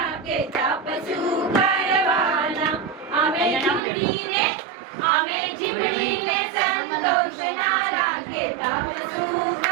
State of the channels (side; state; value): left; drops out; at 3.8 s